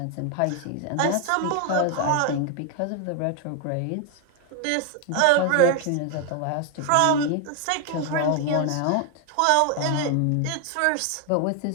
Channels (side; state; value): both; different; correlation 0.00